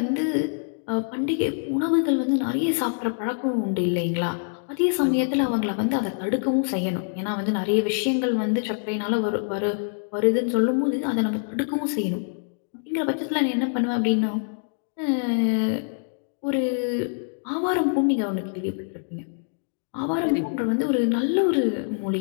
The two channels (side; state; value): right; silent; digital silence